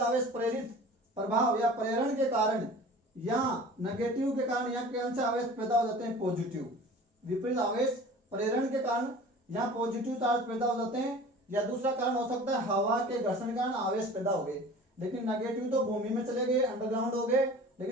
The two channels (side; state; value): both; normal; correlation 0.42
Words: प्रेरित प्रभाव या प्रेरण के कारण यहाँ नेगेटिव के कारण यहाँ कौन से आवेश पैदा हो जाते हैं, पॉजिटिव। विपरीत आवेश प्रेरण के कारण यहाँ पॉजिटिव चार्ज पैदा हो जाते हैं। या दूसरा कारण हो सकता है हवा के घर्षण के कारण आवेश पैदा हो गए, लेकिन नेगेटिव तो भूमि में चले गए, अंडरग्राउंड हो गए,